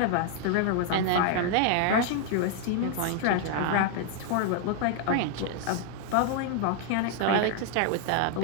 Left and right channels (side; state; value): both; different; correlation 0.00